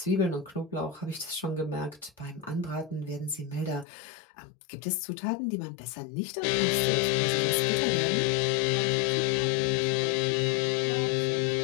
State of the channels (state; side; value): drops out; right; at 3.9 s